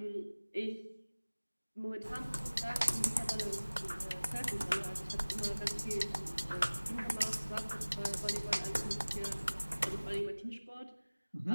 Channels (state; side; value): inverted; both; correlation -1.00